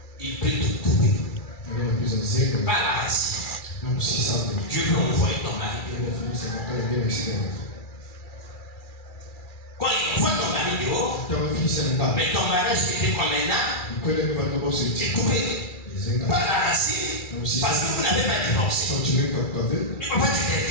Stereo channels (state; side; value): late; right; 2.3 ms